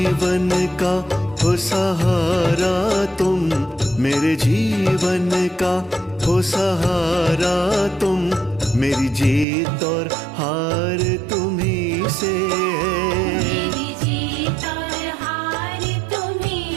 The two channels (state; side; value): drops out; left; at 9.5 s